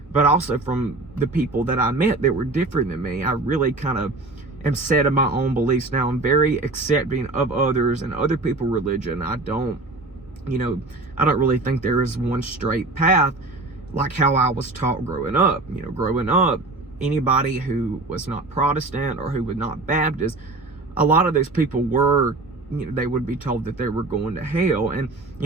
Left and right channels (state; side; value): quieter; left; 3.2 dB